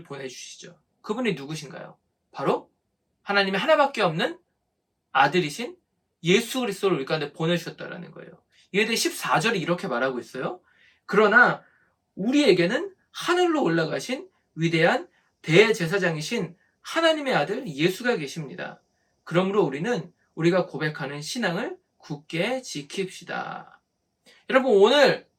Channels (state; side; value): identical; both; correlation 1.00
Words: 보내주시죠. 그분이 누구신가요? 바로 하나님의 하나밖에 없는 아들이신 예수 그리스도를 우리 가운데 보내주셨다는 거예요. 이에 대해 14절이 이렇게 말하고 있어요. 그러나 우리에게는 하늘로 올라가신 위대한 대제사장이신 하나님의 아들 예수가 계십니다. 그러므로 우리는 우리가 고백하는 신앙을 굳게 지킵시다. 여러분, 오늘